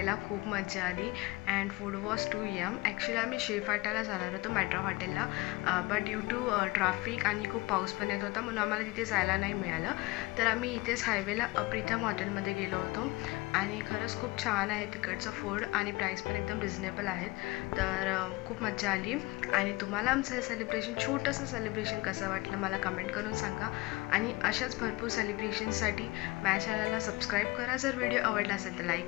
खूप मजा आली and food was too yum. Actually आम्ही शेफाटाला जाणार होतो मेट्रो हॉटेलला, बट ड्यू टू ट्रॅफिक आणि खूप पाऊस पण येत होता, म्हणून आम्हाला तिथे जायला नाही मिळालं। तर आम्ही इथेच हायवेला प्रीतम हॉटेलमध्ये गेलो होतो आणि खरंच खूप छान आहे तिकडचं फूड आणि प्राईस पण एकदम रिजनेबल आहेत। तर खूप मजा आली। आणि तुम्हाला आमचं हे सेलिब्रेशन, छोटंसं सेलिब्रेशन कसं वाटलं मला कमेंट करून सांगा। आणि अशाच भरपूर सेलिब्रेशनसाठी माझ्या चॅनलला सबस्क्राईब करा। जर व्हिडिओ आवडला असेल तर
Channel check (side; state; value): right; quieter; 22.2 dB